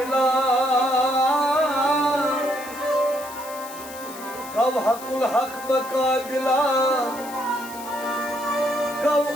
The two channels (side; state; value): left; noise; hiss, 15 dB below the sound